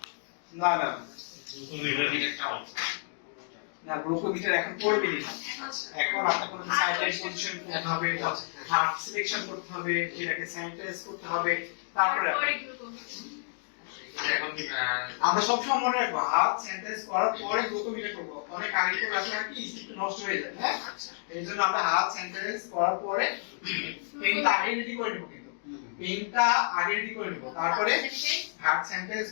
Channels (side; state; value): right; silent; digital silence